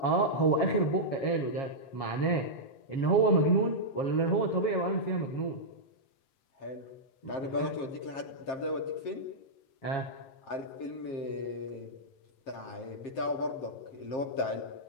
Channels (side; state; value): right; late; 7.5 ms